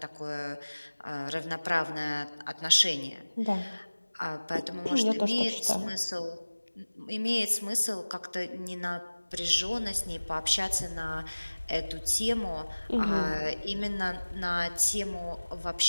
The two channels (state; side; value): inverted; both; correlation -1.00